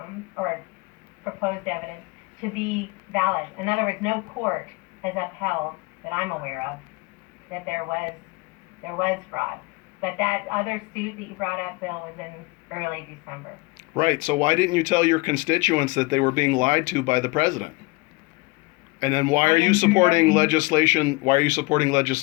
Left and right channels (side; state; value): right; quieter; 25.6 dB